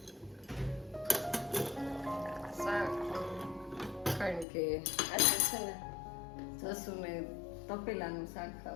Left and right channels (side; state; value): right; drops out; at 4.5 s